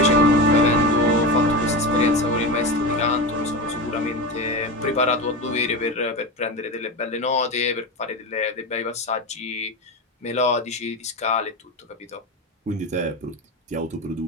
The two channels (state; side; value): normal; both; correlation 0.21